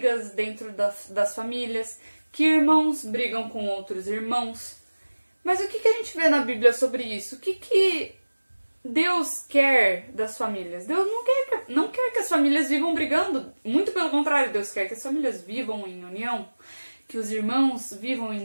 dentro das famílias, que irmãos brigam com outros irmãos. Mas o que a gente vê na Bíblia sobre isso? O que Deus quer das famílias? Deus não quer que as famílias vivam brigando. Muito pelo contrário, Deus quer que as famílias vivam em união, que os irmãos vivam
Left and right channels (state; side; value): inverted; both; correlation -1.00